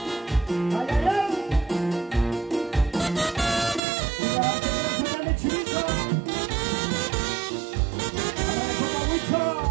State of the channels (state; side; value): drops out; left; at 3.8 s